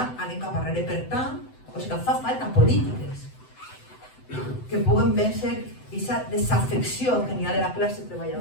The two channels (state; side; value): late; right; 7.9 ms